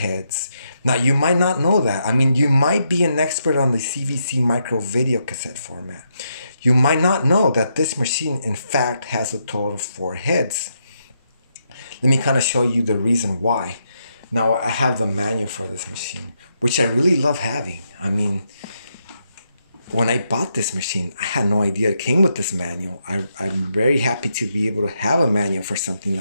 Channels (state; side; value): inverted; both; correlation -0.80